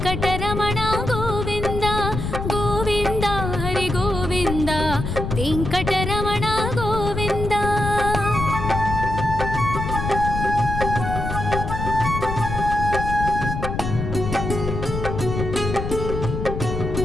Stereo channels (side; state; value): left; noise; rumble, 4 dB below the sound